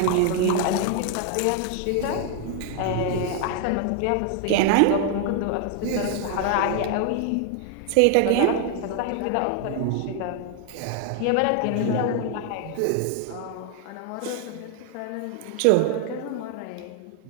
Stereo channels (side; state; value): both; different; correlation 0.00